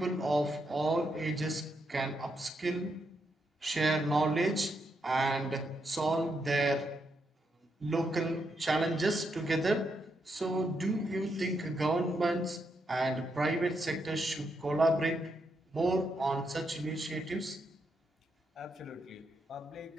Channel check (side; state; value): both; normal; correlation 0.81